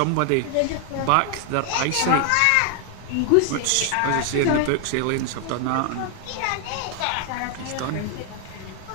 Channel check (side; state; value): both; different; correlation 0.00